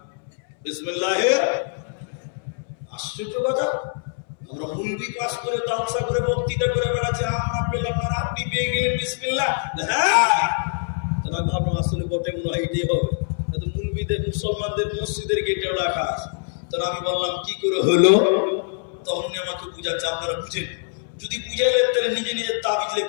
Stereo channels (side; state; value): right; silent; 62 dB below the other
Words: বিসমিল্লাহির। আশ্চর্য কথা, আমরা মুলবি পাস করে তালসা করে বক্তৃতা করে বেড়াচ্ছি, আমরা পেলাম না, আপনি পেয়ে গেলেন বিসমিল্লাহ। হ্যাঁ, তাহলে ভাবলাম আসলে বটে মনে হয় এটাই হবে। তো মুলবিদের মুসলমানদের মসজিদের গেটে রাখা আছে। তখন আমি বললাম কি করে হলো? তখন উনি আমাকে বুঝাচ্ছে, আপনারা বুঝেন, যদি বুঝাইলেন তাহলে নিজে নিজের তাবিজ